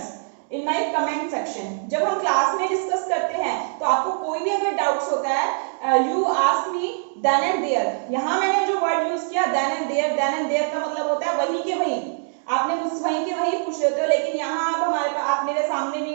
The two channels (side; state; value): left; silent; digital silence